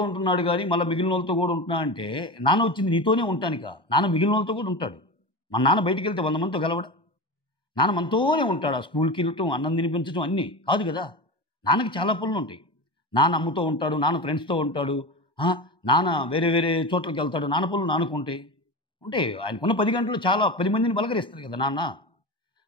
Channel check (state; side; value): late; right; 1.2 ms